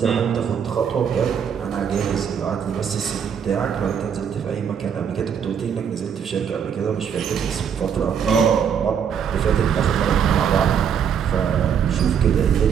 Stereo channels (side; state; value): left; quieter; 7.7 dB